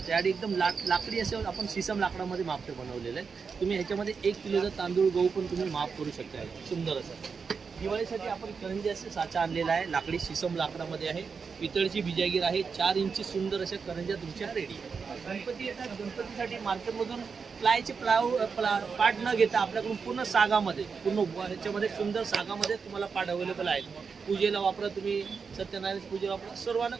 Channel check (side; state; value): left; quieter; 5.5 dB